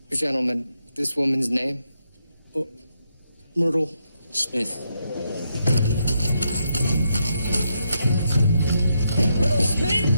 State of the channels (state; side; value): inverted; both; correlation -0.80